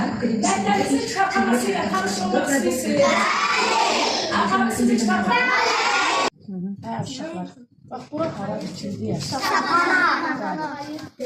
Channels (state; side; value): identical; both; correlation 1.00